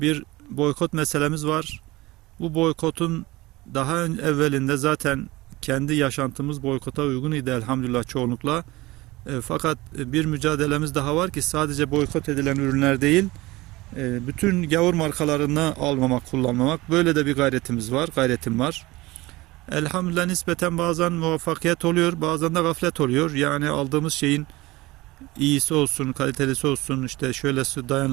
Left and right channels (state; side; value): quieter; left; 20.4 dB